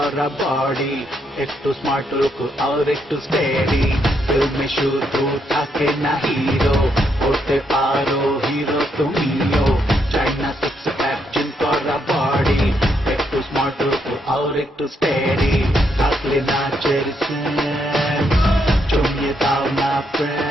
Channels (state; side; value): normal; both; correlation 0.77